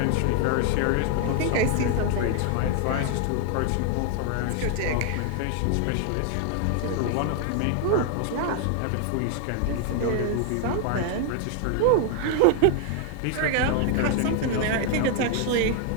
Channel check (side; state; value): both; different; correlation 0.00